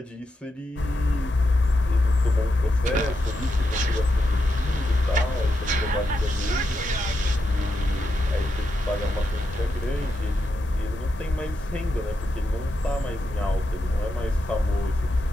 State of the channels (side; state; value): both; normal; correlation 0.85